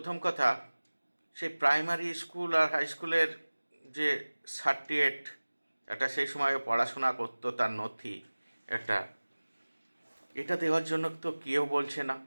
কথা, সেই প্রাইমারি স্কুল আর হাই স্কুলের যে সার্টিফিকেট, একটা সেই সময় পড়াশোনা করতো তার নথি একটা, এটা দেওয়ার জন্য তো কেউ বলছে না।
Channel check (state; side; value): inverted; both; correlation -1.00